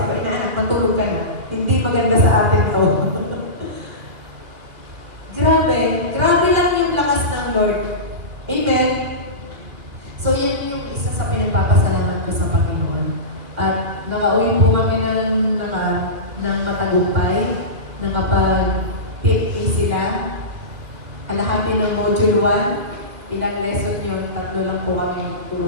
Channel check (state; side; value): late; left; 2.7 ms